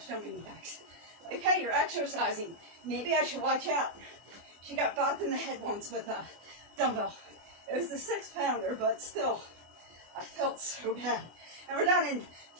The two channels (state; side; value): late; left; 23 ms